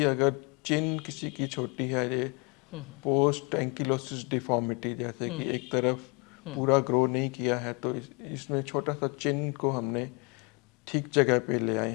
अगर चिन किसी की छोटी है, ये पोस्ट एंकिलोसिस डिफॉर्मिटी, जैसे कि एक तरफ पूरा ग्रो नहीं किया है, तो इसमें छोटा सा चिन को हमने ठीक जगह पे ले आए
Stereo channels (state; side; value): quieter; right; 30.2 dB